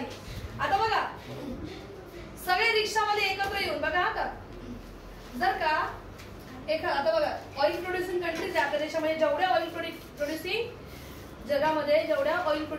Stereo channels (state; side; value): identical; both; correlation 1.00